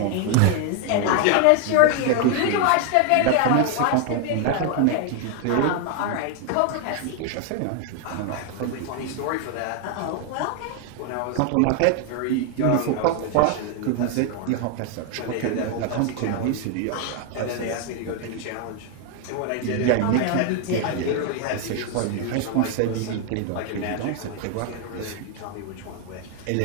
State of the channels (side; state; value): both; different; correlation 0.01